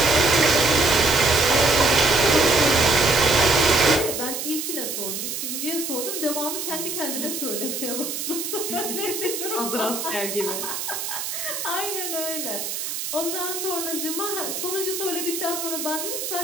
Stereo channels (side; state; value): right; noise; hiss, 5 dB below the sound